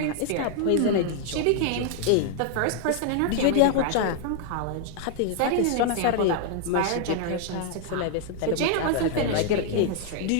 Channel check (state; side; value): different; both; correlation 0.00